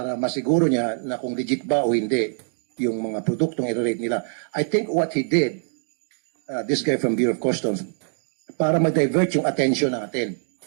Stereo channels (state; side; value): silent; left; digital silence